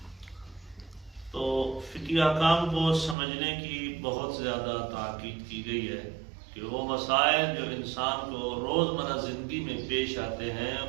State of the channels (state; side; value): drops out; left; at 3.2 s